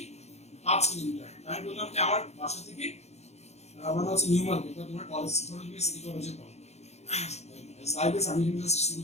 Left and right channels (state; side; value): late; right; 0.31 ms